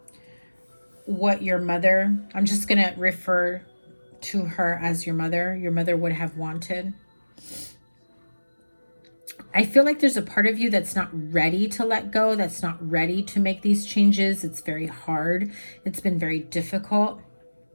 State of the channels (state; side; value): inverted; both; correlation -1.00